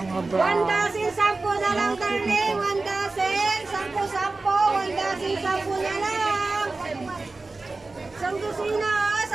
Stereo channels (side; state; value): left; quieter; 3.5 dB